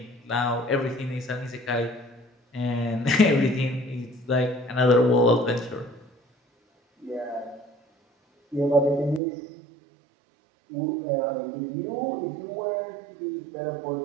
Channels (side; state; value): left; drops out; at 9.2 s